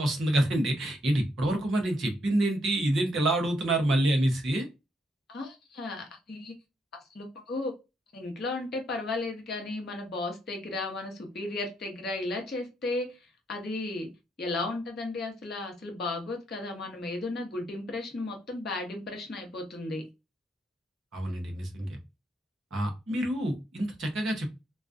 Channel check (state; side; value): normal; both; correlation 0.76